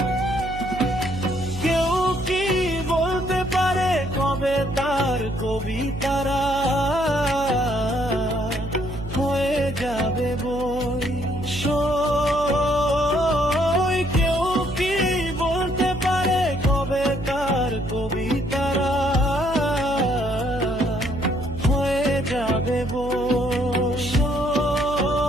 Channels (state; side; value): noise; right; hum, 10 dB below the sound